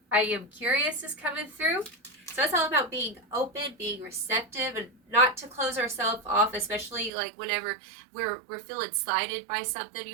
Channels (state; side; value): drops out; left; at 7.1 s